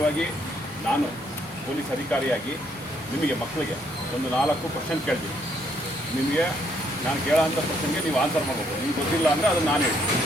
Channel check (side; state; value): both; normal; correlation 0.70